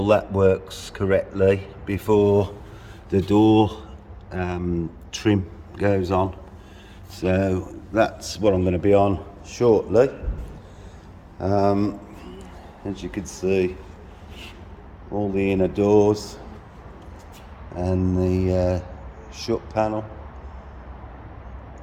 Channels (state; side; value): identical; both; correlation 1.00